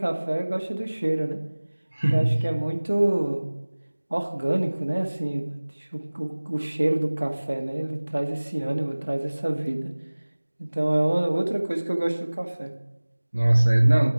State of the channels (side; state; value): both; inverted; correlation -1.00